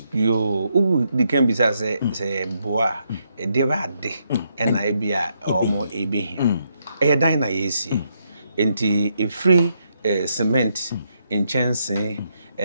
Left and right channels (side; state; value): both; inverted; correlation -0.78